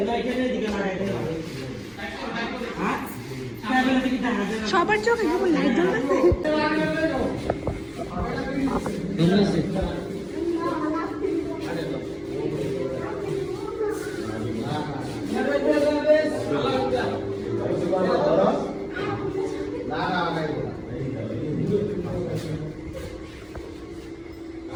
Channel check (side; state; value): both; identical; correlation 1.00